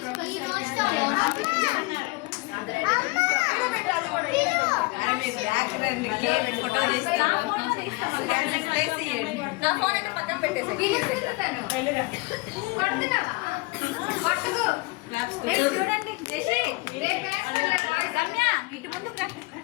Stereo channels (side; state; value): right; quieter; 24.7 dB